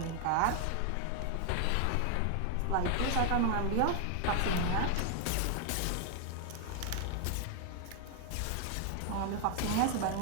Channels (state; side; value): different; both; correlation 0.00